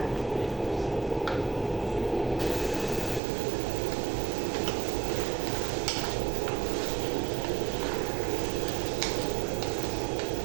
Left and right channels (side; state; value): left; drops out; at 3.2 s